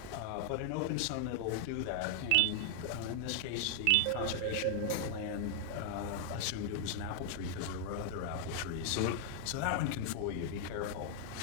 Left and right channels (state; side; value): different; both; correlation 0.00